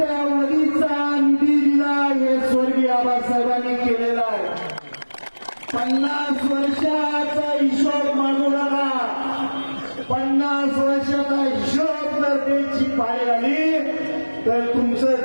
निधी दिला. हे स्वर्गीय आबासाहेबांनी केलेला आहे. 50 वर्षाचा हिशोब मागू नका. 50 वर्षाचा हिशोब जर द्यायची पाळी आली तर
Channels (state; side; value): inverted; both; correlation -1.00